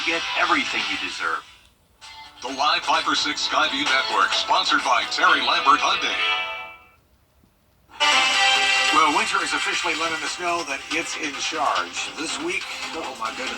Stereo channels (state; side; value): identical; both; correlation 1.00